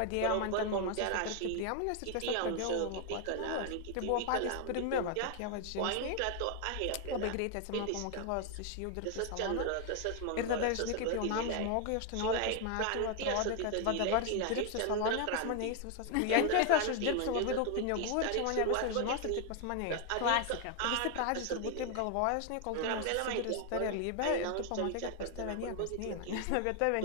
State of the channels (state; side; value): different; both; correlation 0.00